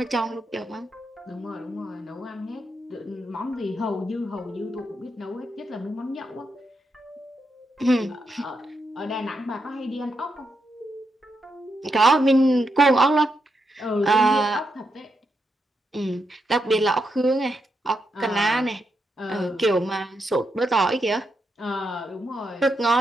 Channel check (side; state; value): both; normal; correlation 0.83